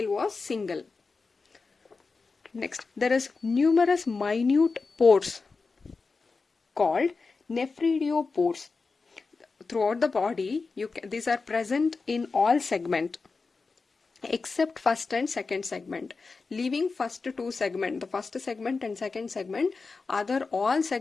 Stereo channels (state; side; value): quieter; right; 4.3 dB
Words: was single. Next, there is numerous minute pores called nephridiopores. Throughout the body, these are present in all segments except first and second segment. Leaving first two segment, the first segment and second segment, other all